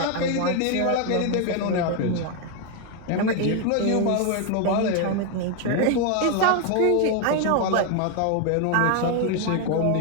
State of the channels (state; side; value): different; both; correlation 0.01